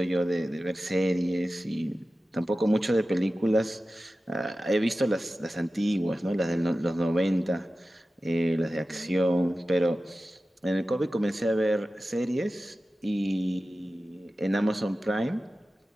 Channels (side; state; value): both; normal; correlation 0.95